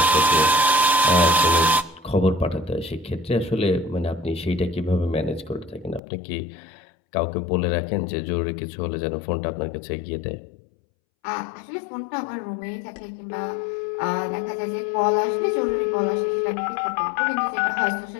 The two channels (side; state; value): right; drops out; at 6.0 s